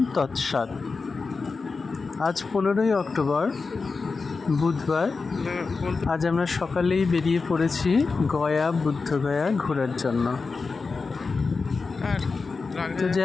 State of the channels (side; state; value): right; quieter; 4.4 dB